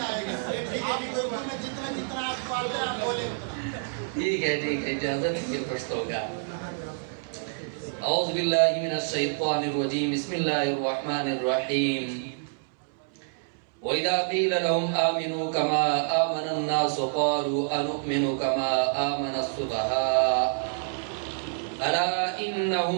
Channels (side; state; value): left; silent; 60 dB below the other